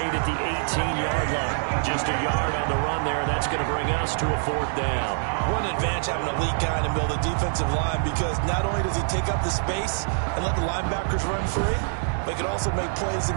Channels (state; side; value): silent; left; 62 dB below the other